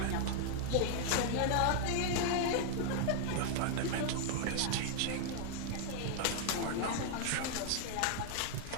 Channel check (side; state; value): both; different; correlation 0.00